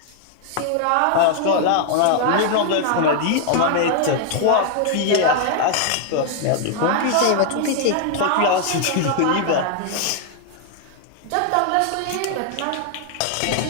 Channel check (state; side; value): different; both; correlation 0.00